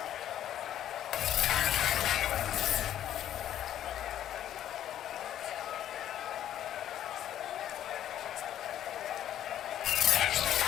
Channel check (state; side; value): quieter; right; 11.3 dB